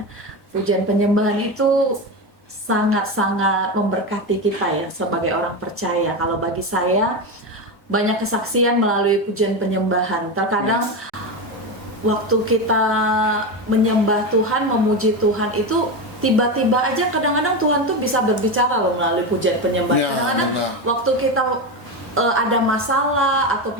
Pujian penyembahan itu sangat-sangat memberkati kita ya sebagai orang percaya. Kalau bagi saya banyak kesaksian melalui pujian penyembahan. Terkadang waktu kita menyembah Tuhan, memuji Tuhan itu tiba-tiba aja kadang-kadang Tuhan tuh bisa berbicara loh melalui pujian penyembahan. Ya, Kadang-kadang benar. waktu kita ada masalah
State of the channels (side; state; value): both; normal; correlation 0.17